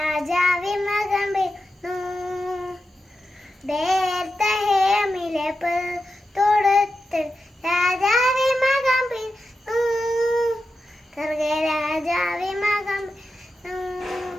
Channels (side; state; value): both; normal; correlation 0.90